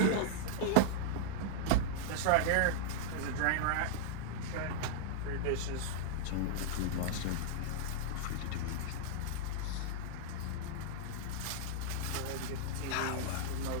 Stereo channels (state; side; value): different; both; correlation -0.01